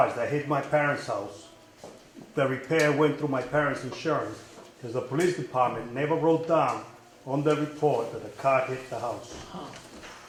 that hit my parents' house, the repair went through my parents' insurance, because the police department never wrote down on the report that the car hit the house.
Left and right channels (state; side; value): identical; both; correlation 1.00